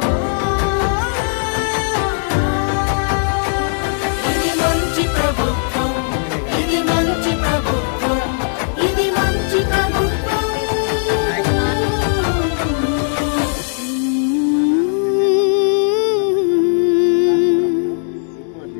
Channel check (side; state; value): right; silent; digital silence